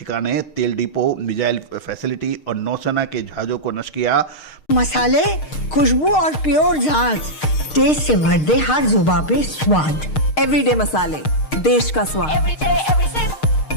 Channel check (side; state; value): right; late; 6.5 ms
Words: तेल डिपो, मिसाइल फैसिलिटी और नौसेना के जहाज़ों को नष्ट किया। मसाले, खुशबू और प्योर झांझ, टेस्ट से भर दे हर जुबां पे स्वाद। एवरीडे मसाले, देश का स्वाद।